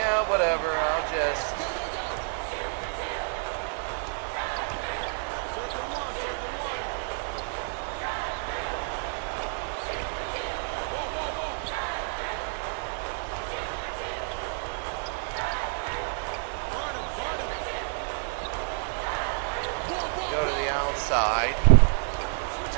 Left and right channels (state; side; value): silent; left; 58 dB below the other